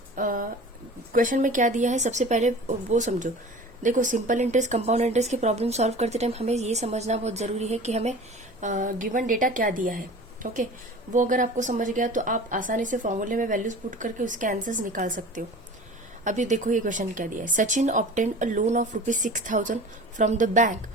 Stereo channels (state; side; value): normal; both; correlation 0.40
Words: क्वेश्चन में क्या दिया है, सबसे पहले वो समझो। देखो, सिंपल इंटरेस्ट कंपाउंड इंटरेस्ट की प्रॉब्लम सॉल्व करते टाइम हमें ये समझना बहुत जरूरी है कि हमें गिवन डेटा क्या दिया है। ओके वो अगर आपको समझ गया तो आप आसानी से फॉर्मूले में वैल्यूज पुट करके उसके आंसर्स निकाल सकते हो। अभी देखो ये क्वेश्चन क्या दिया है। Sachin obtain a loan of ₹6,000 from the bank